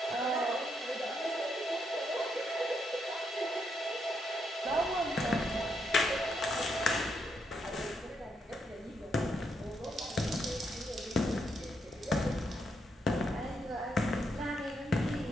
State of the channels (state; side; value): normal; both; correlation 0.79